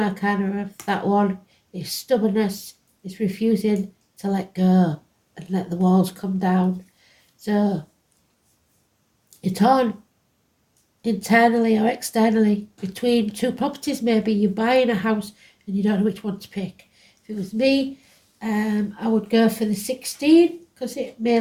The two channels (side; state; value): both; identical; correlation 1.00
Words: of that one. Is stubbornness, is refusing to let go and let the walls come down. So you're torn internally or externally between two properties. Maybe you're buying a house and you don't know which one to pick. If it was me, I would go for the 16 because it may